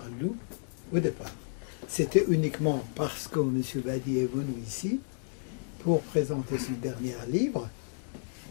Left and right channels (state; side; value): silent; right; 57 dB below the other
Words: lu au départ. C'était uniquement parce que M. Badi est venu ici pour présenter son dernier livre